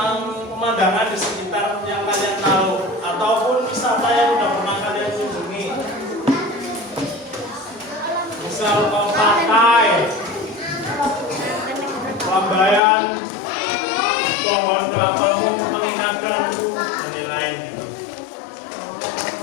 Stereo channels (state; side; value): drops out; right; at 12.8 s